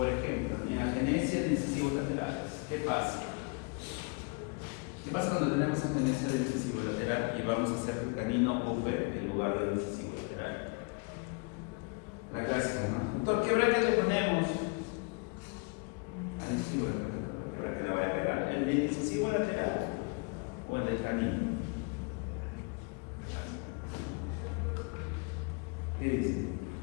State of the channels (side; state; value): right; quieter; 32.9 dB